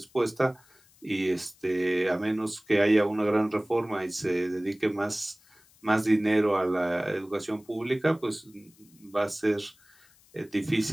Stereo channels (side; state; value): left; noise; hiss, 29 dB below the sound